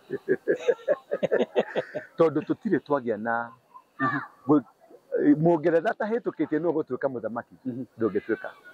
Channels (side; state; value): both; identical; correlation 1.00